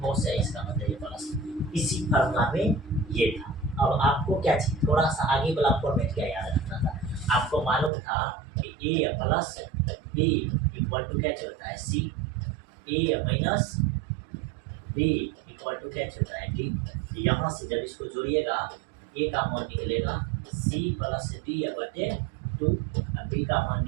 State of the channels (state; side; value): drops out; left; at 7.9 s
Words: cos है, इसका मतलब ये प्लस। इसी फार्मूला में ये था। अब आपको क्या चाहिए, थोड़ा सा आगे वाला फॉर्मेट क्या याद रखना था, आपको मालूम था कि ए प्लस बी इक्वल टू क्या होता है सी, ए माइनस बी इक्वल टू क्या होता है डी। यहाँ से जब इसको जोड़िएगा ए का मान निकलेगा सी प्लस डी बटे 2, बी का मान